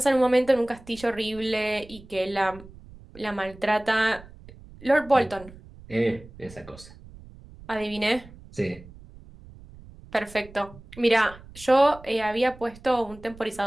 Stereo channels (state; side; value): noise; right; rumble, 20 dB below the sound